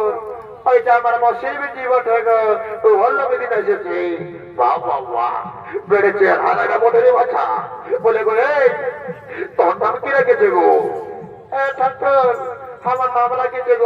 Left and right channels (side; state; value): both; identical; correlation 1.00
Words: ওইটা আমার মশির বিটি বটে গো, তো হল্লো বেদিন এসেছে। বাবা বেড়েছে হারাটা বটে রে বাচ্চা। বলে গো এই, তোর নাম কি রেখেছে গো? ঠাকুর, আমার নাম রেখেছে